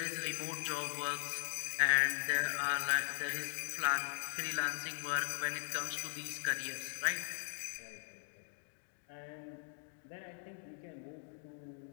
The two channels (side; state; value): right; silent; 51 dB below the other